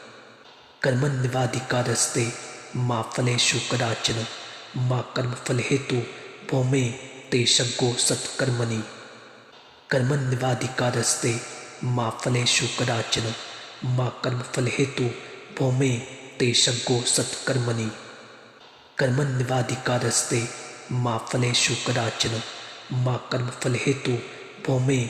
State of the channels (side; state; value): both; identical; correlation 1.00